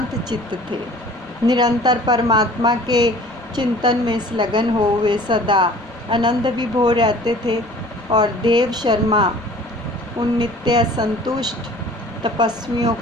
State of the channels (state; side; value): normal; both; correlation 0.48